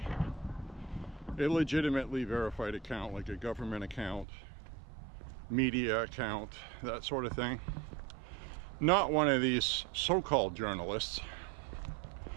A legitimately verified account, like a government account, media account, that sort of thing. Not one of these so-called journalists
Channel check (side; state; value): left; drops out; at 4.2 s